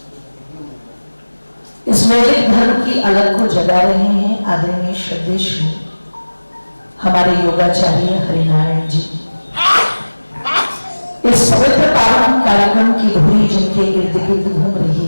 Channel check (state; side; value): inverted; both; correlation -1.00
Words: इस वैदिक धर्म की अलग को जगा रहे हैं आदरणीय श्रद्धेय हमारे योगाचार्य हरिनारायण जी। इस पवित्र पावन कार्यक्रम की धुरी जिनके इर्द गिर्द घूम रही